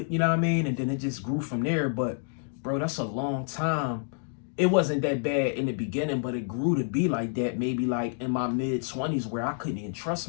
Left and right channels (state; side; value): silent; right; digital silence